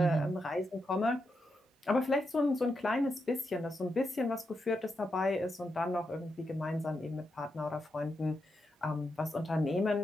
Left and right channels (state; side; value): normal; both; correlation 0.85